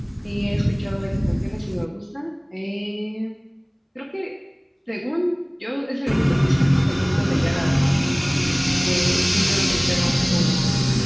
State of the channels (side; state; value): both; identical; correlation 1.00